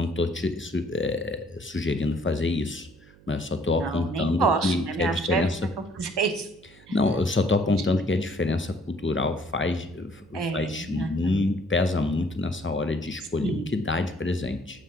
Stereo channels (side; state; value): right; noise; hum, 25 dB below the sound